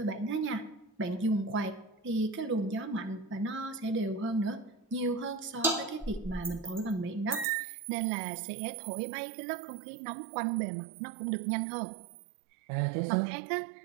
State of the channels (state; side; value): drops out; left; at 7.5 s